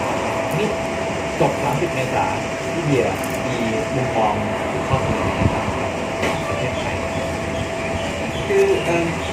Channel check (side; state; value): both; identical; correlation 1.00